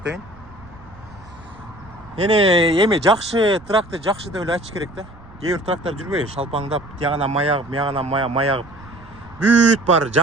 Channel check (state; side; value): noise; right; rumble, 22 dB below the sound